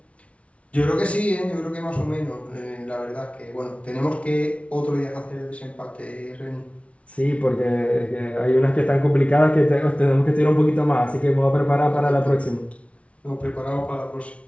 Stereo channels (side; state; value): right; late; 0.063 ms